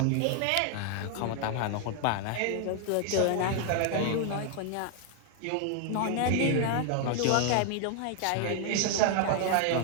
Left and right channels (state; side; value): different; both; correlation 0.00